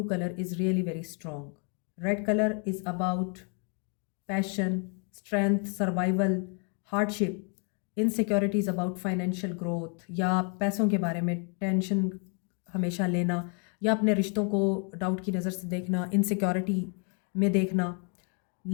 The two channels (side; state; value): right; quieter; 39.0 dB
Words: colour is really very strong. Red colour is about passion, strength, survival, hardship. Insecurities about financial growth या पैसों के बारे में टेंशन हमेशा लेना या अपने रिश्तों को डाउट की नज़र से देखना, इनसिक्योरिटी में देखना।